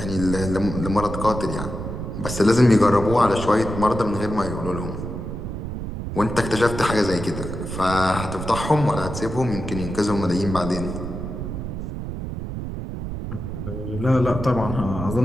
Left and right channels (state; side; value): noise; right; rumble, 6 dB below the sound